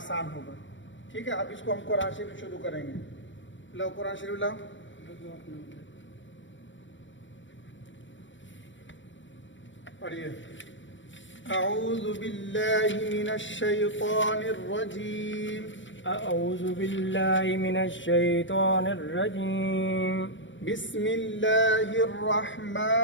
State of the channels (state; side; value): late; right; 0.55 ms